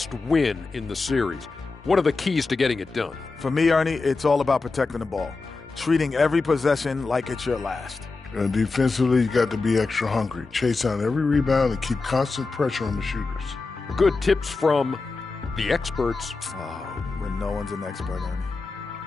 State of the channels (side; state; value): right; quieter; 3.9 dB